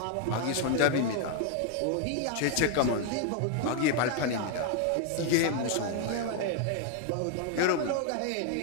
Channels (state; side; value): different; both; correlation 0.00